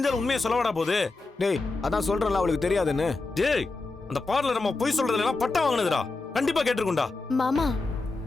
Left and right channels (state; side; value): quieter; right; 3.5 dB